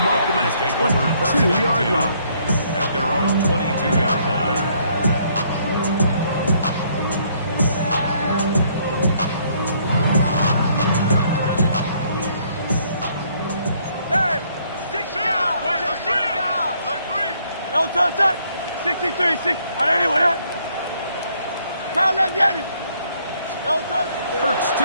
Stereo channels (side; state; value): both; inverted; correlation -0.66